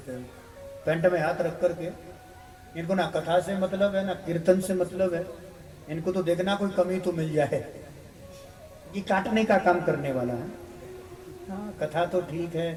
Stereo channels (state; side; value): identical; both; correlation 1.00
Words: हैं, पेंट में हाथ रख करके। इनको ना कथा से मतलब है, ना कीर्तन से मतलब है, इनको तो देखना कोई कमी तो मिल जाए। ये काटने का काम करने वाला है। हाँ, कथा तो ठीक